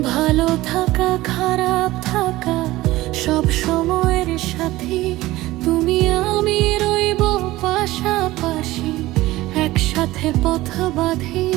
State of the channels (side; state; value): left; quieter; 17.7 dB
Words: ভালো থাকা খারাপ থাকা সব সময়ের সাথী, তুমি আমি রইব পাশাপাশি একসাথে পথ বাঁধি।